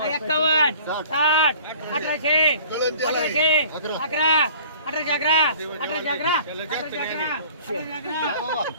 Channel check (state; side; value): inverted; both; correlation -0.48